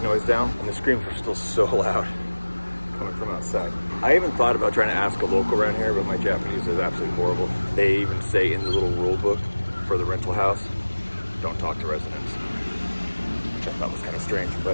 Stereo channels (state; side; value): inverted; both; correlation -1.00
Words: noise down. And the screams were still so loud coming from outside. I even thought about trying to ask a local around here, but my Japanese is absolutely horrible. They even say in the little rule book for the rental house, don't talk to residents, which I thought was kind of strange,